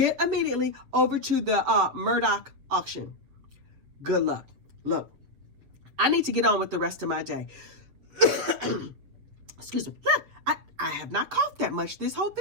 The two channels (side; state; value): left; late; 7.3 ms